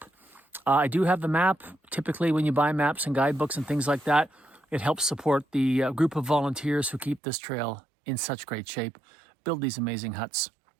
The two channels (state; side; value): drops out; left; at 7.2 s